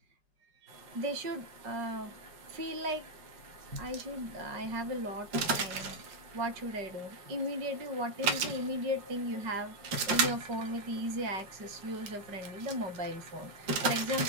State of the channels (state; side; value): late; left; 4.9 ms